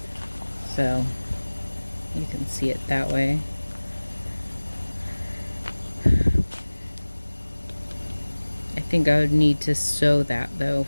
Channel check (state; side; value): inverted; both; correlation -1.00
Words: So you can see it that way. I think I would need to sew that though